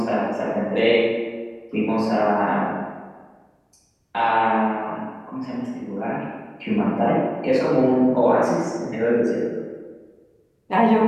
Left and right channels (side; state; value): both; identical; correlation 1.00